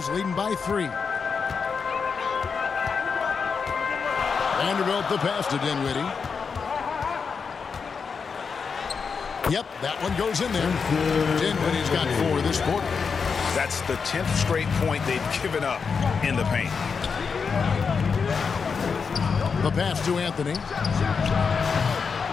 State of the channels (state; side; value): quieter; right; 5.6 dB